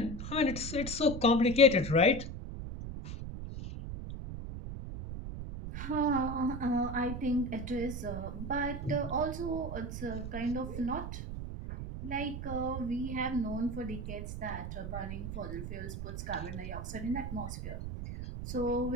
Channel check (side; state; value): right; noise; rumble, 6 dB below the sound